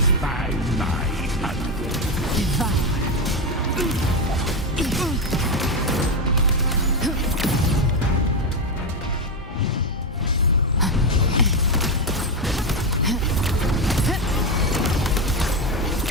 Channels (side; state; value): both; normal; correlation 0.11